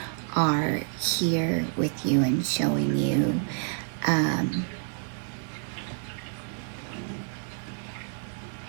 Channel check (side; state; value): left; silent; 59 dB below the other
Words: are here with you and showing you